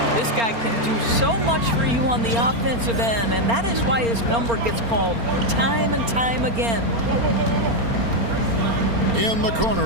This guy can do so much for you on the offensive end, and that is why his number gets called time and time again. In the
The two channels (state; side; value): late; left; 4.3 ms